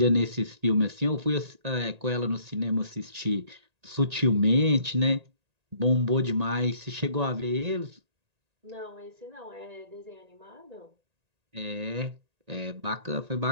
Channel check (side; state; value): left; late; 1.8 ms